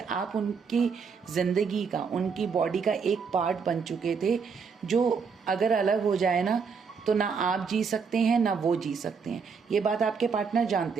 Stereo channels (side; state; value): left; quieter; 5.6 dB